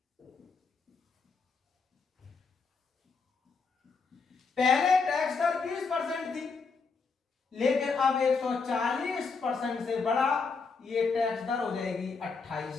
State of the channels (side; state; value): right; quieter; 4.8 dB